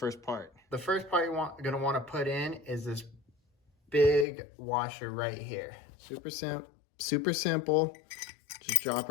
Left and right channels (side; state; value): right; drops out; at 4.2 s